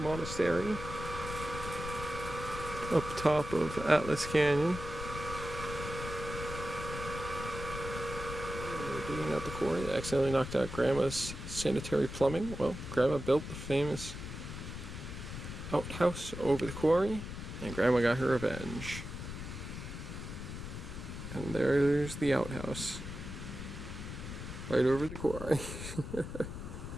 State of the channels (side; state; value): left; noise; rumble, 8 dB below the sound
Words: up top of Atlas Canyon. We're digging out the quarry. They accidentally knocked out Grandma's sanitary plumbing. Well, Grandma built the famous outhouse over the quarry, and Grandma got her revenge. And there's the outhouse. Right over the quarry.